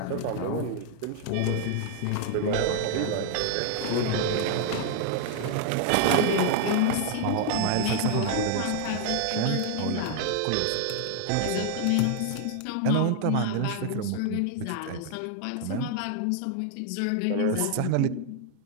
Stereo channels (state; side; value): different; both; correlation 0.00